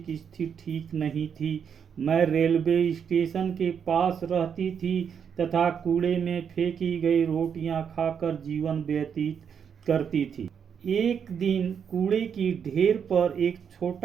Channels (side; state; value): left; quieter; 7.4 dB